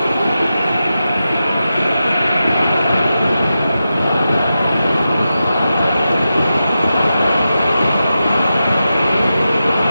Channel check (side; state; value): both; inverted; correlation -0.91